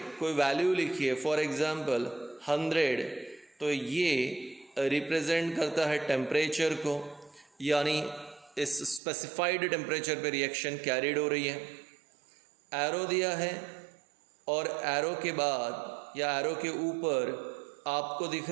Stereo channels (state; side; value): drops out; left; at 9.0 s